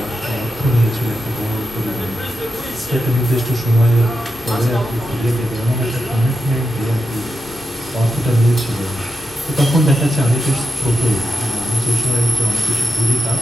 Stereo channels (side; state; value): both; normal; correlation 0.88